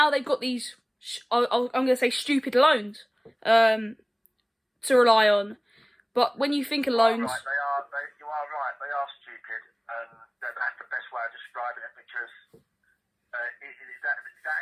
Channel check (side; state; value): both; identical; correlation 1.00